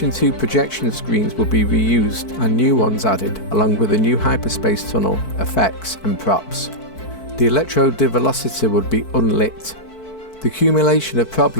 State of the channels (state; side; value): late; right; 4.6 ms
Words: 2 projection screens will be reused and new ones added, along with a new hyperspace tunnel, effects and props. The electro-develocity would be unlit. The accumulation of